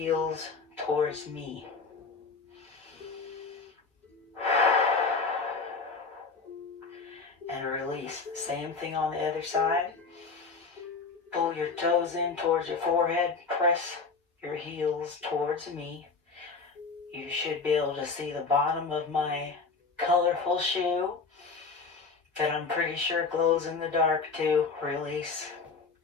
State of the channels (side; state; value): right; quieter; 4.5 dB